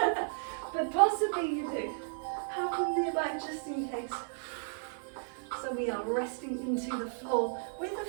but possibly you do. Have them nearby just in case. So we are resting into the floor with the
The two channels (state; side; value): silent; left; digital silence